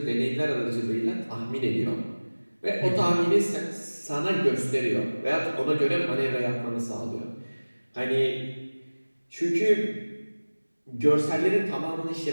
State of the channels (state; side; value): inverted; both; correlation -1.00